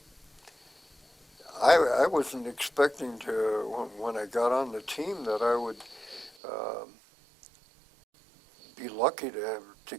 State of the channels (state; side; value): drops out; left; at 6.4 s